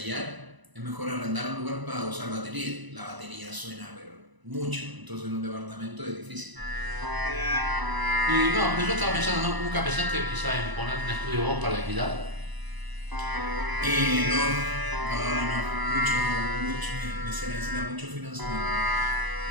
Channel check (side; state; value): left; late; 1.0 ms